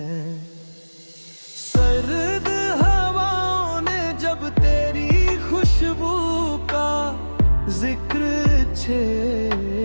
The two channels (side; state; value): both; inverted; correlation -1.00